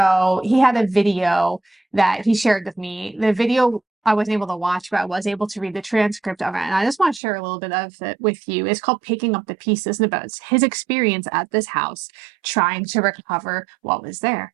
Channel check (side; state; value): left; drops out; at 7.2 s